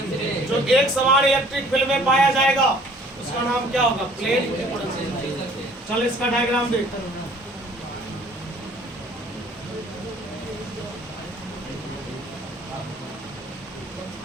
जो एक समान इलेक्ट्रिक फील्ड में पाया जाएगा उसका नाम क्या होगा, प्लेन इक्विपोटेंशियल। चल इसका डायग्राम देख।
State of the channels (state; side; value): normal; both; correlation 0.55